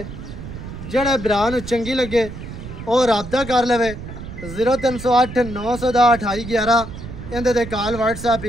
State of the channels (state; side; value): noise; right; rumble, 11 dB below the sound